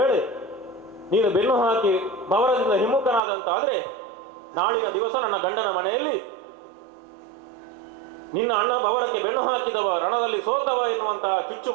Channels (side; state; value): left; drops out; at 3.2 s